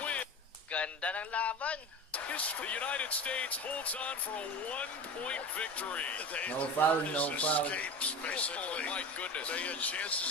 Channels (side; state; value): both; normal; correlation 0.31